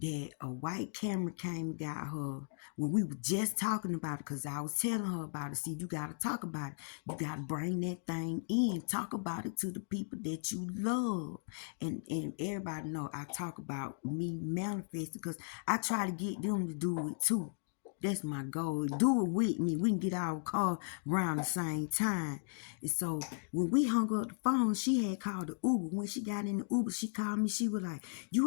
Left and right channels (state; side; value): silent; right; digital silence